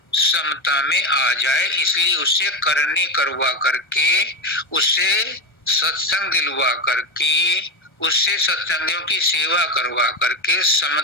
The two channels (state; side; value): late; right; 1.3 ms